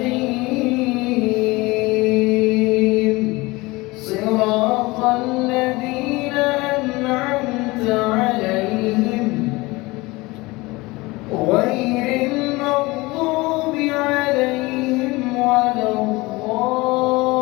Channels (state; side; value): quieter; right; 22.3 dB